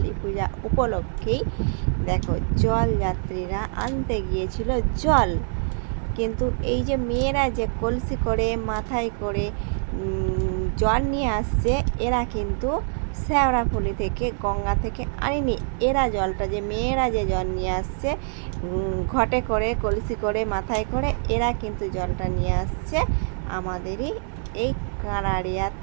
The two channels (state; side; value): silent; left; 62 dB below the other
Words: পূজা উপলক্ষেই দেখো, জলযাত্রীরা আনতে গিয়েছিল জল। কিন্তু এই যে মেয়েরা যে কলসি করে মাথায় করে জল নিয়ে আসছে, এরা কিন্তু শেওড়াফুলি থেকে, গঙ্গা থেকে আনেনি। মেয়েরা যে জল নিয়ে আসছে ঘটে করে, কলসি করে, মাথায় করে, এরা কিন্তু জলটা নিয়ে আসছে আমাদেরই এই কাঁড়াড়িয়া